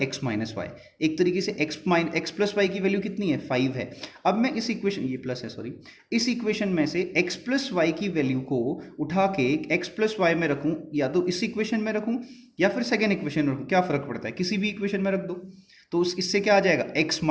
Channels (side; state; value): both; identical; correlation 1.00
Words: x माइनस वाई। एक तरीके से x प्लस वाई की वैल्यू कितनी है, 5 है। अब मैं इस इक्वेशन, ये प्लस है सॉरी, इस इक्वेशन में से x प्लस वाई की वैल्यू को उठा के x प्लस वाई में रखूं, या तो इस इक्वेशन में रखूं या फिर सेकेंड इक्वेशन में रखूं, क्या फर्क पड़ता है, किसी भी इक्वेशन में रख दो, तो इससे क्या आ जाएगा, x